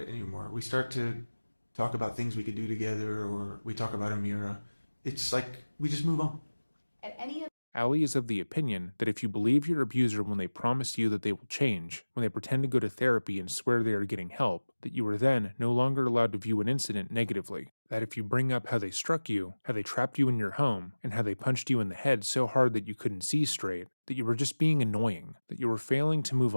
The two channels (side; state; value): both; inverted; correlation -1.00